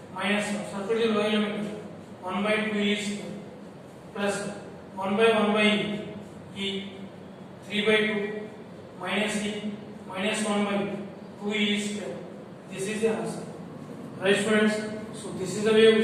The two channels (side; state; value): both; identical; correlation 1.00